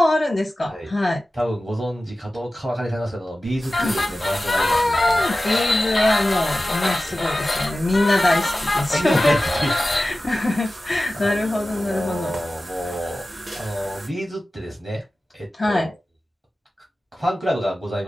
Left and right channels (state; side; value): normal; both; correlation 0.95